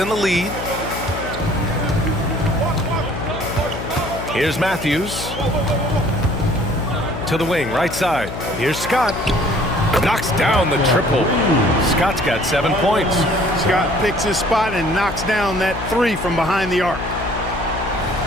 the lead. Here's Matthews. To the wing, right side. Here's Scott. Knocks down the triple. Scott's got 7 points. Scott picks his spot and knocks down that 3 from behind the arc.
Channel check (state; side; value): noise; left; hum, 8 dB below the sound